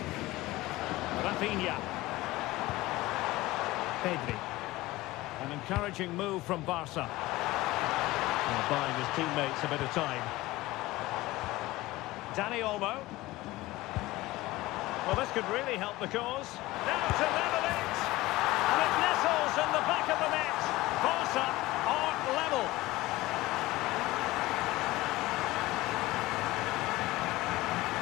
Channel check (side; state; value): right; quieter; 18.8 dB